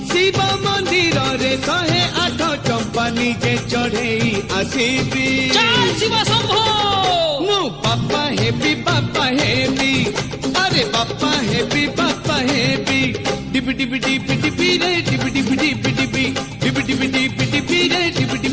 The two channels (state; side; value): identical; both; correlation 1.00